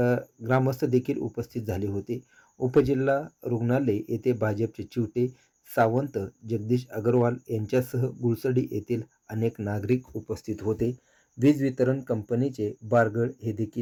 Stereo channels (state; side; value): identical; both; correlation 1.00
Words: ग्रामस्थ देखील उपस्थित झाले होते. उपजिल्हा रुग्णालय येथे भाजपचे चिवटे, सावंत, जगदीश अग्रवाल यांच्यासह गुळसडी येथील अनेक नागरिक उपस्थित होते. वीज वितरण कंपनीचे बारगळ हे